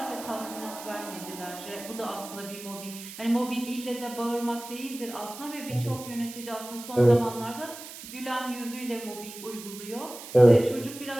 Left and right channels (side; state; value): right; noise; hiss, 13 dB below the sound